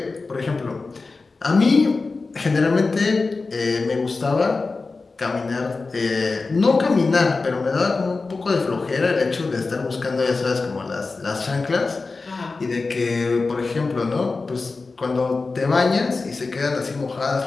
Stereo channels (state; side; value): quieter; right; 3.9 dB